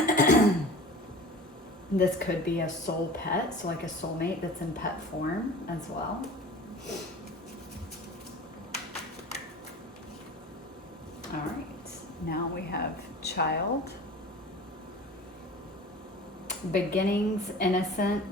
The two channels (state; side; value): normal; both; correlation 0.39